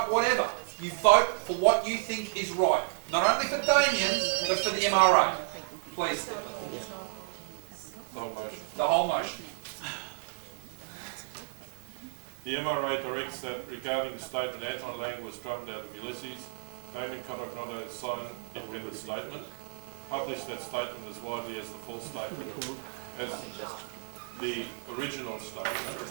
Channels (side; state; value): left; silent; 56 dB below the other